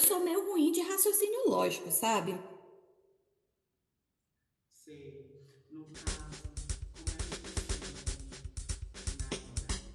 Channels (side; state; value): both; identical; correlation 1.00